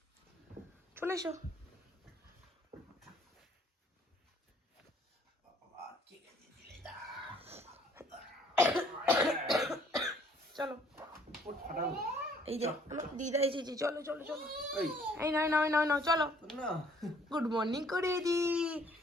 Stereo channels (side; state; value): both; normal; correlation 0.61